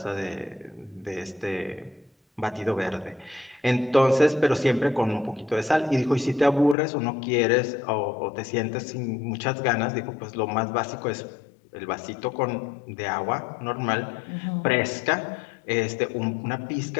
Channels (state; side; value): drops out; right; at 6.8 s